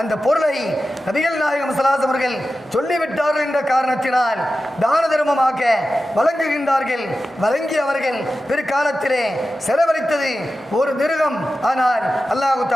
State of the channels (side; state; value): both; normal; correlation 0.93